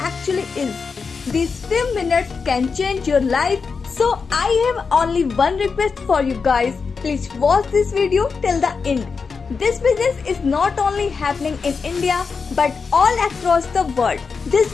actually is. These few minutes can change your life. So I have only one request for you guys. Please watch this video till the end. This business is not only happening in India but all across the world. This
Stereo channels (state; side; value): quieter; right; 5.1 dB